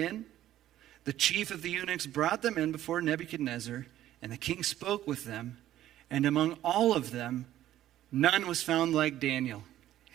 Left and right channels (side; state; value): left; quieter; 13.1 dB